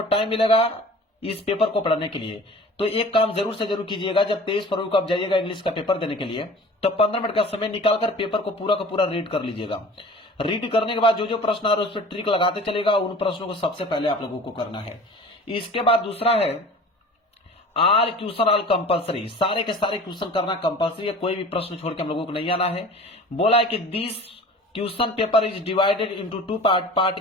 टाइम मिलेगा इस पेपर को पढ़ने के लिए। तो एक काम जरूर से जरूर कीजिएगा, जब 23 फरवरी को आप जाइएगा इंग्लिश का पेपर देने के लिए, तो 15 मिनट का समय निकालकर पेपर को पूरा का पूरा रीड कर लीजिएगा। रीड करने के बाद जो जो प्रश्न आ रहे हैं उस पर ट्रिक लगाते चलेगा। उन प्रश्नों को सबसे पहले आप लोगों को करना है। इसके बाद दूसरा है आल क्वेश्चन आल कंपलसरी, सारे के सारे क्वेश्चन करना कंपलसरी है, कोई भी प्रश्न छोड़ के हम लोगों को नहीं आना है। बोला है कि this question paper is divided into 2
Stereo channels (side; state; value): both; normal; correlation 0.42